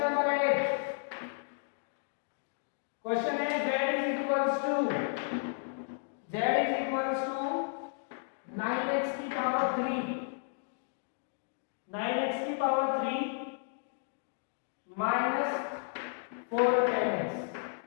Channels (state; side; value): silent; right; digital silence